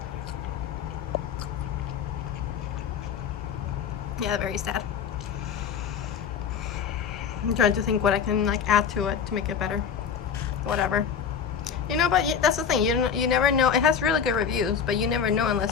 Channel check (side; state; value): right; quieter; 7.1 dB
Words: Yeah, very sad. I'm trying to think what I can like add to it to make it better. Whatever. You know, but that's the thing. You never know. It has really good reviews, but you never know